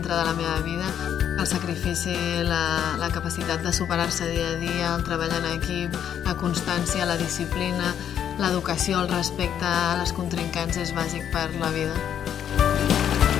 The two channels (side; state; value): right; quieter; 9.3 dB